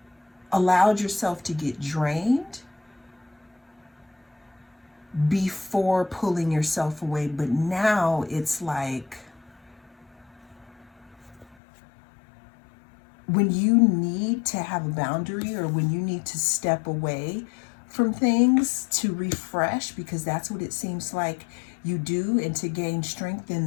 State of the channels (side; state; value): right; drops out; at 11.6 s